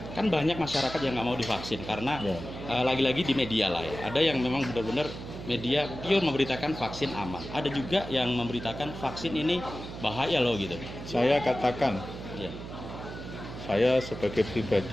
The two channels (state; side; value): noise; right; hum, 10 dB below the sound